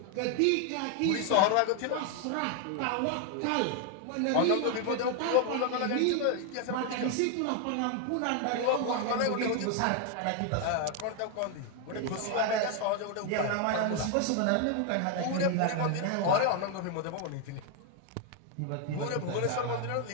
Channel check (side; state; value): both; different; correlation 0.01